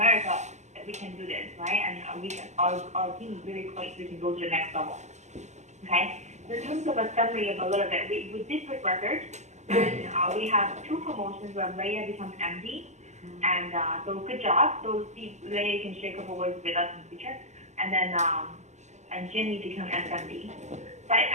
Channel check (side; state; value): left; late; 0.33 ms